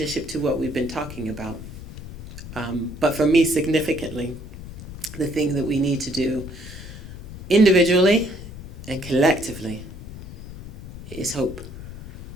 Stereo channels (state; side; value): noise; left; rumble, 12 dB below the sound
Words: to what we've been talking about. But for me, significantly, the thing that we need to do individually and collectively is hope.